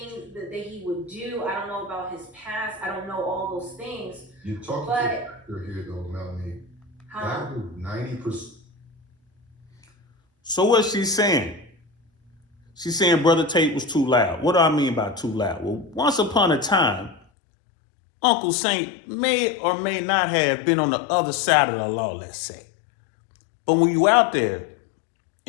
that he would do. I don't know about his past. I don't know all those things. You're talking to the actor here, though, Melanie. That was 90%. So what's she saying? She's saying Brother Tate was too loud. What do I mean by too loud? Well, once upon a time, Uncle Saint may or may not have been on the other side of the law, let's say. But when you out there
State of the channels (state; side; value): drops out; right; at 17.2 s